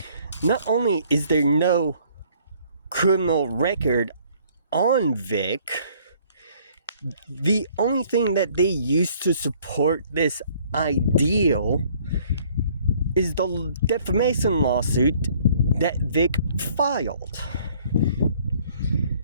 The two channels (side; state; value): both; inverted; correlation -0.59